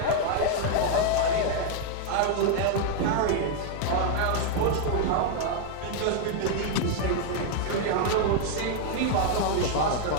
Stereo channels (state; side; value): different; both; correlation 0.00